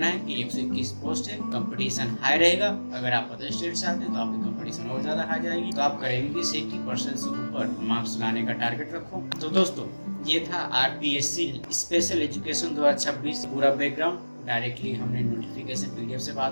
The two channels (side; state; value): both; inverted; correlation -1.00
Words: है कि 121 पोस्ट है, कंपटीशन हाई रहेगा। अगर आप अदर स्टेट से आते हैं तो आपकी कंपटीशन और ज्यादा हाई जाएगी। तो आप करेंगे कि 80% से ऊपर मार्क्स लाने का टारगेट रखो। तो दोस्तों ये था RPSC स्पेशल एजुकेशन 2026 पूरा बैकग्राउंड डायरेक्टली हमने नोटिफिकेशन पीडीएफ से